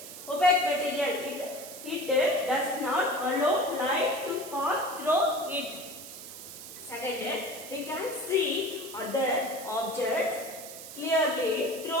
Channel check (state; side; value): noise; right; hiss, 12 dB below the sound